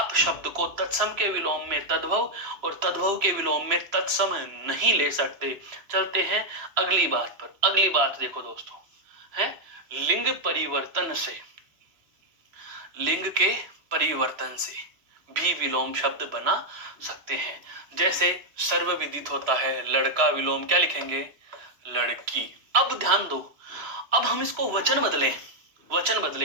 शब्द को तत्सम के विलोम में तद्भव और तद्भव के विलोम में तत्सम नहीं ले सकते। चलते हैं अगली बात पर। अगली बात देखो दोस्तों, है लिंग परिवर्तन से, लिंग के परिवर्तन से भी विलोम शब्द बना सकते हैं। जैसे सर्वविदित होता है लड़का, विलोम क्या लिखेंगे, लड़की। अब ध्यान दो, अब हम इसको वचन बदलें, वचन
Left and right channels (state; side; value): late; left; 3.0 ms